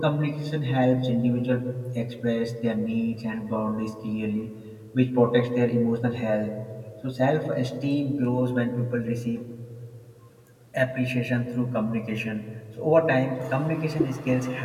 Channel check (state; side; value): identical; both; correlation 1.00